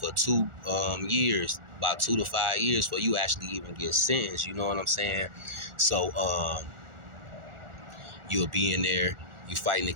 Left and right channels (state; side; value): late; left; 1.4 ms